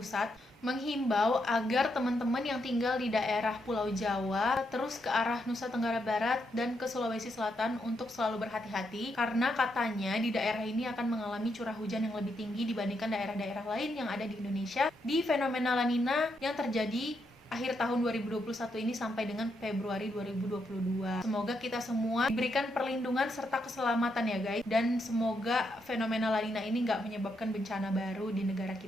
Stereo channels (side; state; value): both; normal; correlation 0.80